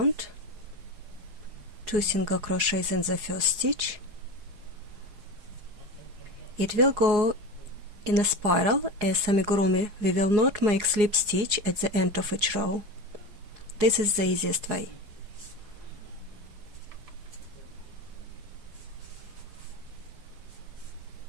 2 single crochets in the first stitch. It will go in a spiral. As amigurumi, we will not make slip stitch at the end of each row. This is the easiest way.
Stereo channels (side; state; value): left; late; 4.8 ms